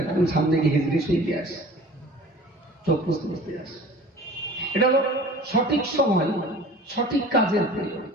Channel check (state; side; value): normal; both; correlation 0.43